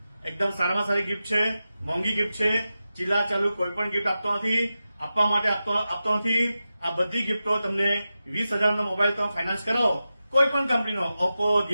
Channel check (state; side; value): inverted; both; correlation -0.92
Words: એકદમ સારામાં સારી ગિફ્ટ છે, મોંઘી ગિફ્ટ છે. ચીલા ચાલુ કોઈ પણ ગિફ્ટ આપતો નથી, આપવા માટે આપતો નથી. આ બધી ગિફ્ટો તમને 20,000 નો મોબાઈલ તમે ફાઇનાન્સ કરાવો કોઈ પણ કંપનીનો, ઓપ્પો,